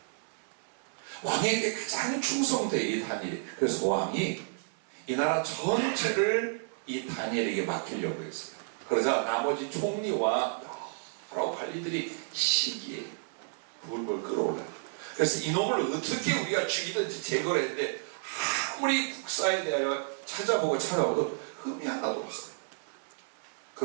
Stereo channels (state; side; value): silent; left; 57 dB below the other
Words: 왕에게 가장 충성돼 이 다니엘이. 그래서 왕이 이 나라 전체를 이 다니엘에게 맡기려고 했어요. 그러자 나머지 총리와 여러 관리들이 시기에 불을 끌어올라요. 그래서 이놈을 어떻게 우리가 죽이든지 제거를 했는데 아무리 국사에 대하여 찾아보고 흠이 하나도 없어요.